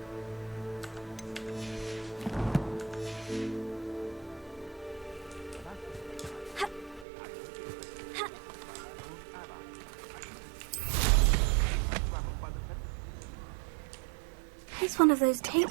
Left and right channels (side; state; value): left; drops out; at 7.1 s